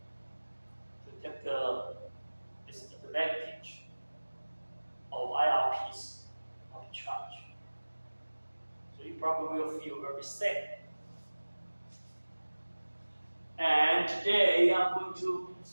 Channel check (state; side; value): inverted; both; correlation -1.00